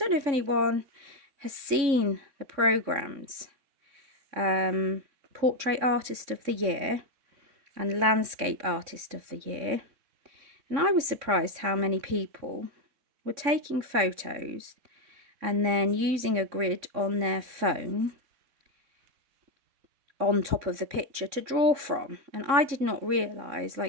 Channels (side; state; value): left; late; 3.6 ms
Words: know if anyone has seen the programs, Portrait Artist of the Year and Landscape Artist of the Year, and I was surprised how many people were taking photos and then using a grid on their phone on top of the picture to draw from. And I did not realise,